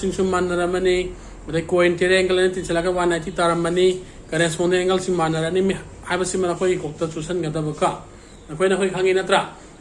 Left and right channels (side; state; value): both; identical; correlation 1.00